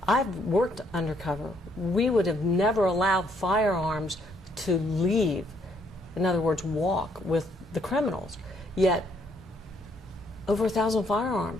I've worked undercover. We would have never allowed firearms to leave, in other words, walk with the criminals. Yet, over 1,000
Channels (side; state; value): both; normal; correlation 0.69